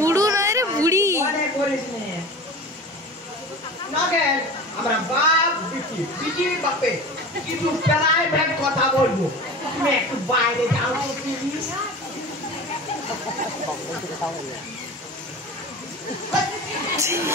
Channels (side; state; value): both; normal; correlation 0.34